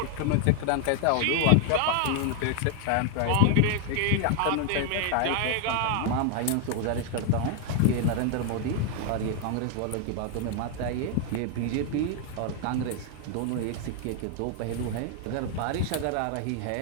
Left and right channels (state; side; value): different; both; correlation 0.00